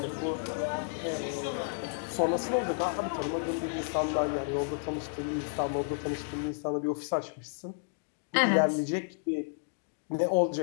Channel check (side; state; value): right; silent; digital silence